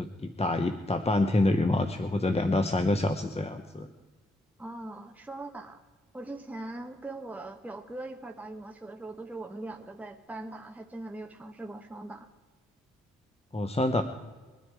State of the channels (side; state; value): both; normal; correlation 0.78